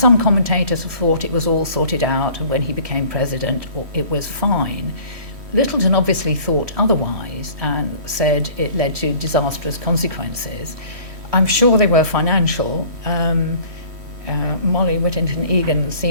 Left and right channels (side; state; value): left; late; 3.1 ms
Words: commentators have thought it was all sorted out, and when he became president, it was fine. Littleton obviously thought otherwise and said it led to disastrous consequences. I'm sure they were financial. Molly Whittington Egan